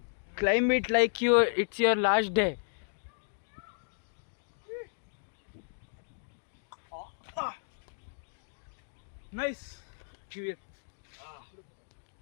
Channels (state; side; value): silent; right; digital silence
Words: Climb it like it's your last day. Nice. Give it.